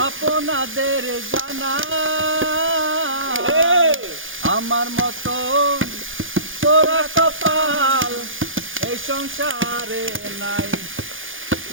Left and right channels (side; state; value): left; late; 0.58 ms